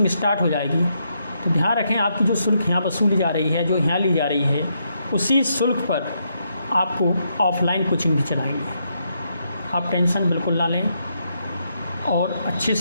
स्टार्ट हो जाएगी तो ध्यान रखें आपकी जो शुल्क यहाँ वसूली जा रही है, जो यहाँ ली जा रही है, उसी शुल्क पर आपको ऑफलाइन कोचिंग भी चलाएंगे। आप टेंशन बिल्कुल ना लें और अच्छे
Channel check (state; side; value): inverted; both; correlation -0.78